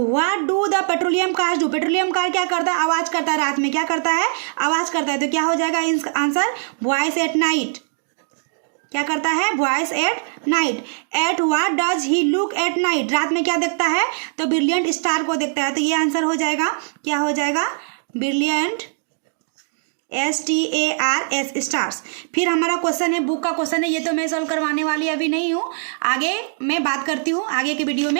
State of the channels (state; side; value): silent; left; digital silence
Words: do the petroleum cars do? Petroleum car क्या करता है? आवाज करता है रात में, क्या करता है? आवाज करता है। तो क्या हो जाएगा आंसर? वॉइस एट नाइट, क्या करता है? Voice at night. At what does he look at night, रात में क्या देखता है? तो ब्रिलियंट स्टार को देखता है। तो ये आंसर हो जाएगा, क्या हो जाएगा? Brilliant STARS, stars. फिर हमारा क्वेश्चन है, बुक का क्वेश्चन है, ये तो मैं सॉल्व करवाने वाली अभी नहीं हूँ, आगे मैं बात करती हूँ आगे के वीडियो